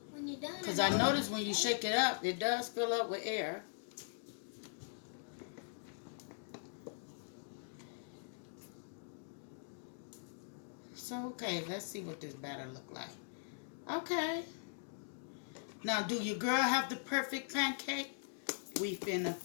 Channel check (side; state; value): right; silent; digital silence